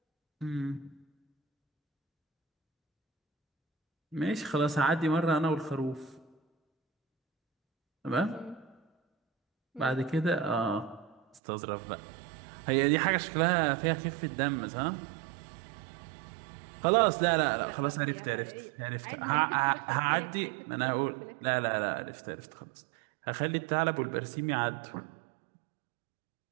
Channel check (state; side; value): drops out; left; at 11.4 s